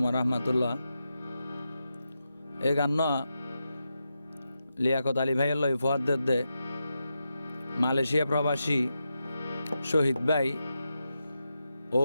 রহমতুল্লাহ। এ গান লিয়াকত আলী ভাইয়ের লই ফুয়াদ দে মালয়েশিয়া প্রবাসী শহীদ ভাই ও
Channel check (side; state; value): both; inverted; correlation -0.87